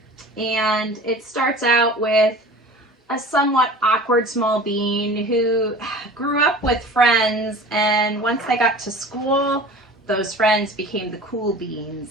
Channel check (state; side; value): normal; both; correlation 0.40